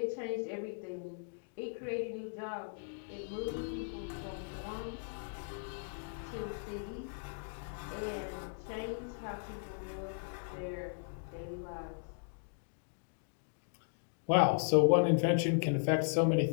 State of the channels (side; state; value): right; silent; digital silence